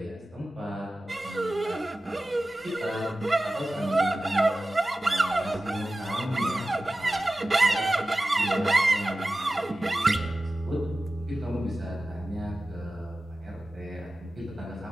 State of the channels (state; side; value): normal; both; correlation 0.95